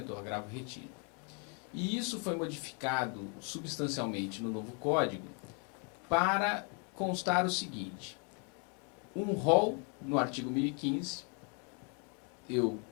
ou agravo retido. E isso foi modificado substancialmente no novo Código para constar o seguinte: um rol no artigo 1015, eu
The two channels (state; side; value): quieter; right; 38.2 dB